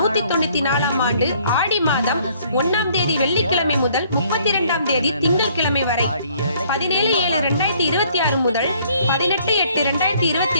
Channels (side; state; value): both; inverted; correlation -0.62